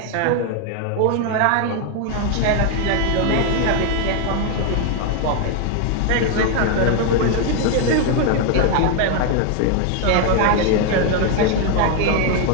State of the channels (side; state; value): both; different; correlation 0.01